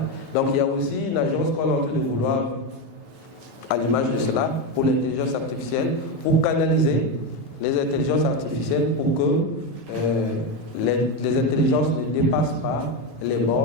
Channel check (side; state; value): both; normal; correlation 0.12